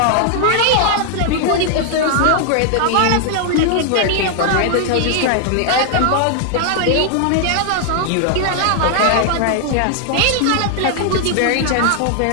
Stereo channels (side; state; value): both; different; correlation 0.00